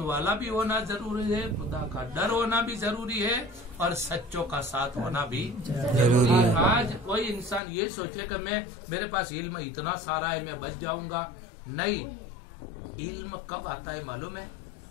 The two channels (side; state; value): right; drops out; at 7.6 s